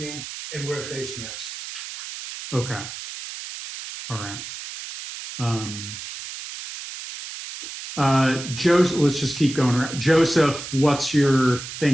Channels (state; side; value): noise; right; hiss, 10 dB below the sound